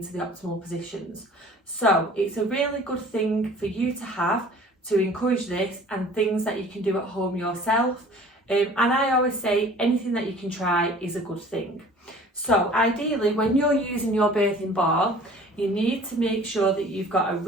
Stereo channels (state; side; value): normal; both; correlation 0.48